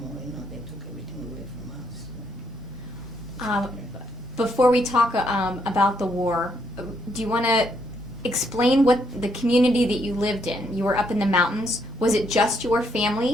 more, they took everything away from us. Before we talk about the war, do you want to explain what the community that you lived in? You were up in the mountains. Was it just your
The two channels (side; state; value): both; normal; correlation 0.74